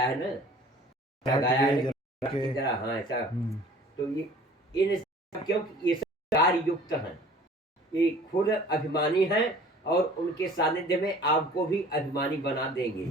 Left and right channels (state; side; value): normal; both; correlation 0.48